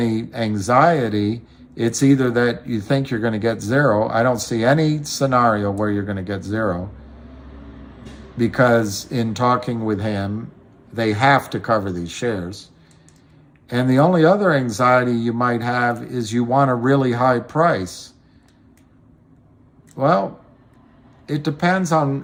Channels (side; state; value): both; identical; correlation 1.00